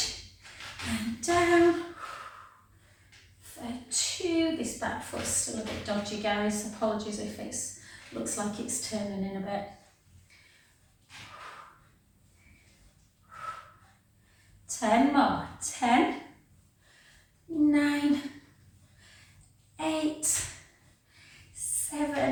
And down. For 2. This back foot's still a bit dodgy, guys. Apologies if it looks like it's turning in a bit. 10 more. 10, 9, 8,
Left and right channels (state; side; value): identical; both; correlation 1.00